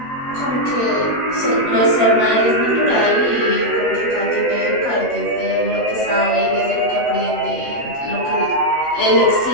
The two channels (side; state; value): right; late; 7.9 ms